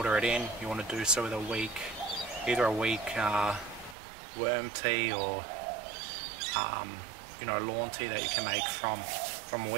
it in, you want to do so with either a weak worm tea or you know, lawn tea that you can make from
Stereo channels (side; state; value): left; drops out; at 4.0 s